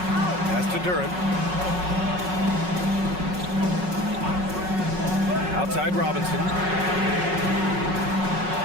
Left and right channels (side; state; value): left; late; 5.4 ms